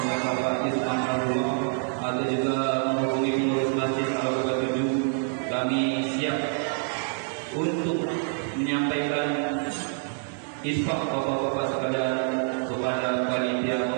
Bapak Isman Al-Rumah, atau juga menghubungi pengurus Masjid Al-Quba 7. Kami siap untuk menyampaikan infak Bapak-bapak sekalian kepada panitia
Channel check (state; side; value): silent; left; 60 dB below the other